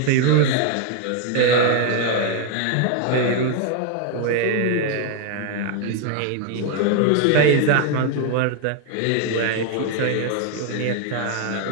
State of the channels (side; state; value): both; different; correlation 0.00